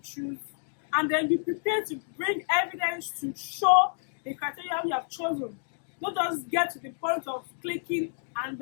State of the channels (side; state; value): right; silent; digital silence